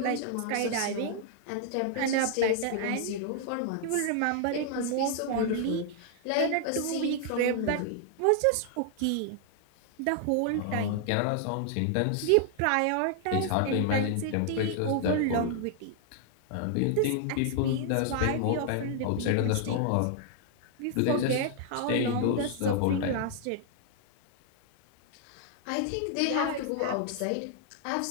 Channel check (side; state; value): both; different; correlation 0.00